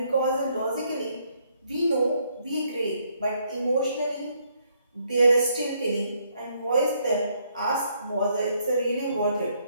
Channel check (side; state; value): both; inverted; correlation -0.71